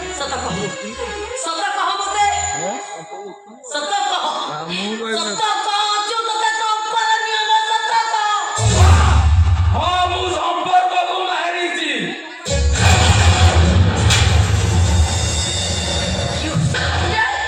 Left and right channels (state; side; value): identical; both; correlation 1.00